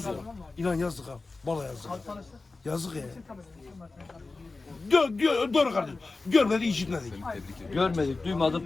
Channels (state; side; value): quieter; right; 3.6 dB